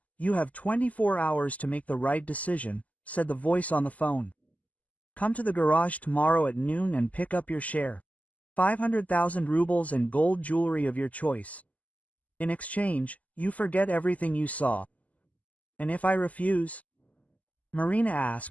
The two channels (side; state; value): right; late; 0.074 ms